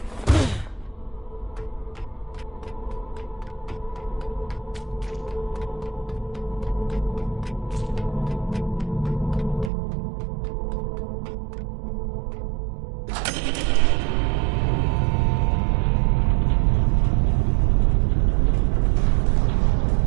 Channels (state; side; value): drops out; left; at 9.7 s